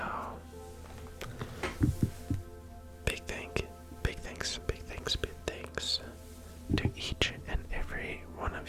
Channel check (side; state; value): both; identical; correlation 1.00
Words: big thanks to each and every one